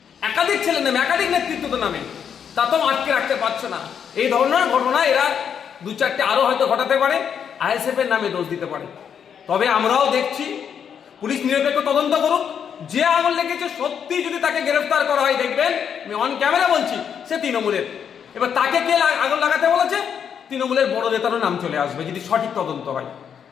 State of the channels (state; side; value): quieter; right; 7.8 dB